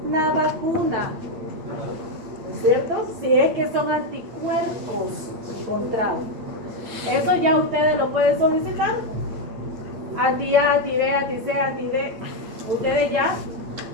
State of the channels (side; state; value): left; late; 9.2 ms